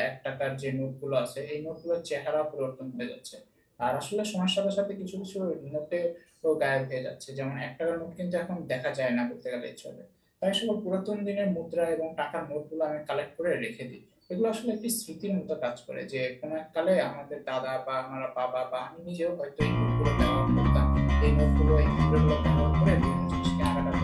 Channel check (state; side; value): identical; both; correlation 1.00